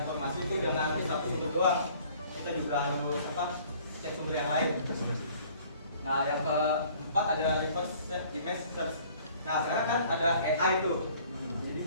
itu jangan satu sumber doang. Kita juga harus cek sumber yang lain. Nah, yang keempat ada reverse image search. Nah, sekarang kan ada AI tuh. Jadi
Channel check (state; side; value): inverted; both; correlation -0.54